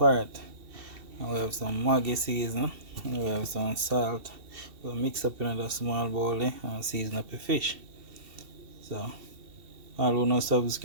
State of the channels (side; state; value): left; late; 2.7 ms